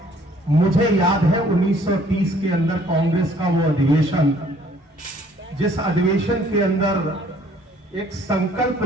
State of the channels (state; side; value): normal; both; correlation 0.59